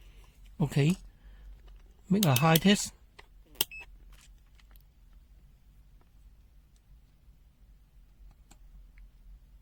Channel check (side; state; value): both; identical; correlation 1.00